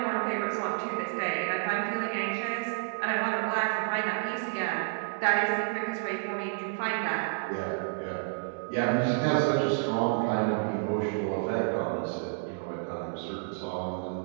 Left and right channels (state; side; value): silent; left; digital silence